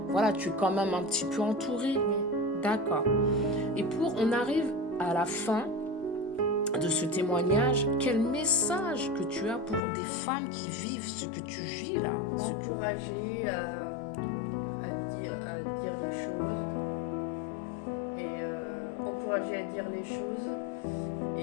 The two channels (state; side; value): drops out; right; at 9.8 s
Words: voilà, tu es quand même un petit peu entourée. D'accord. Et on arrive à la fin de ce témoignage, quel message que tu as pour des femmes qui vivent ce que tu vis là? Encourager à dire les choses et encourager à dire les choses